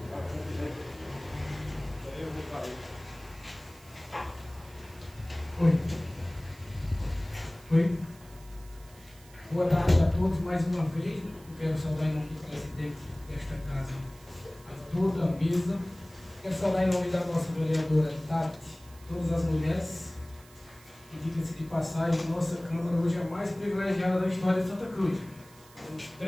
Oi. Boa tarde a todos mais uma vez. Eu quero saudar em nome do presidente desta casa a toda a mesa. Quero saudar em nome da nossa vereadora Tati, todas as mulheres. E diga-se de passagem, nossa Câmara hoje é a mais privilegiada da história de Santa Cruz. Temos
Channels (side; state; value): right; noise; hiss, 24 dB below the sound